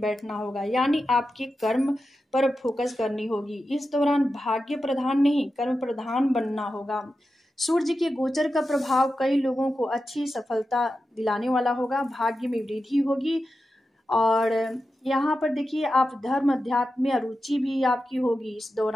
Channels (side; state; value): both; normal; correlation 0.91